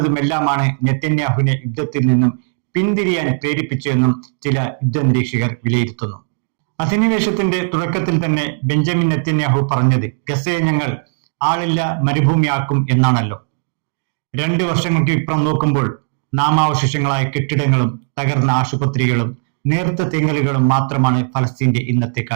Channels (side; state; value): left; silent; digital silence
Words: നെതന്യാഹുവിനെ യുദ്ധത്തിൽ നിന്നും പിന്തിരിയാൻ പ്രേരിപ്പിച്ചതെന്നും ചില യുദ്ധനിരീക്ഷകർ വിലയിരുത്തുന്നു. അധിനിവേശത്തിന്റെ തുടക്കത്തിൽ തന്നെ ബെഞ്ചമിൻ നെതന്യാഹു പറഞ്ഞത് ഗസയെ ഞങ്ങൾ ആളില്ല മരുഭൂമിയാക്കും എന്നാണല്ലോ. 2 വർഷങ്ങൾക്ക് ഇപ്പുറം നോക്കുമ്പോൾ നാമാവശേഷങ്ങളായ കെട്ടിടങ്ങളും തകർന്ന ആശുപത്രികളും നേർത്ത തെങ്ങലുകളും മാത്രമാണ് ഫലസ്തീന്റെ ഇന്നത്തെ